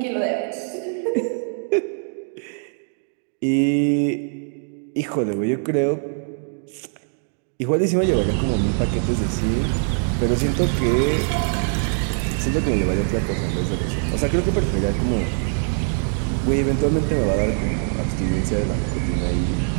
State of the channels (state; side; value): silent; left; 64 dB below the other